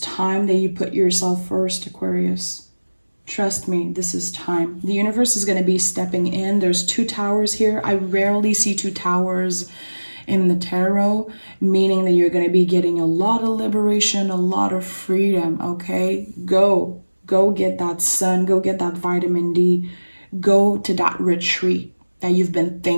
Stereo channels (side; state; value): both; inverted; correlation -1.00